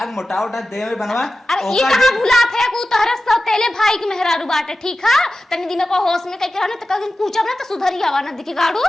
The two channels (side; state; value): both; normal; correlation 0.94